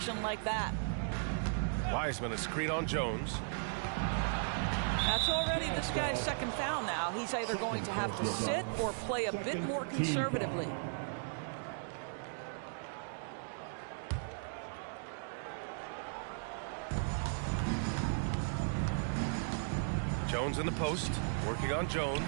like that. Wiseman, a screen on Jones. That's already this guy's second foul now. He's either going to have to sit or play a bit more conservatively. Jones in the post, working on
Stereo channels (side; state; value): left; silent; digital silence